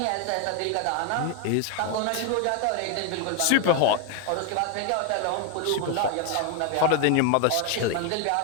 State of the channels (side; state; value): both; different; correlation 0.01